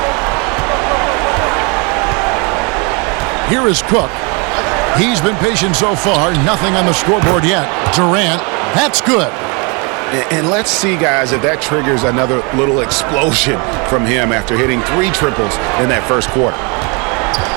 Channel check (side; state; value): left; quieter; 31.7 dB